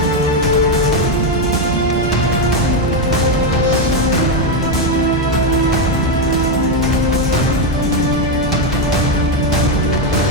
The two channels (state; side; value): normal; both; correlation 0.06